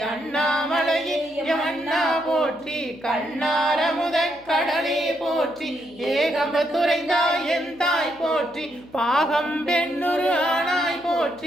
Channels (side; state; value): left; noise; hum, 28 dB below the sound